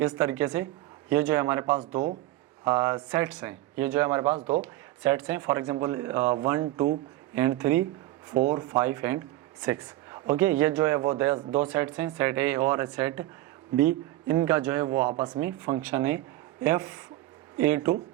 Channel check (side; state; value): left; quieter; 16.3 dB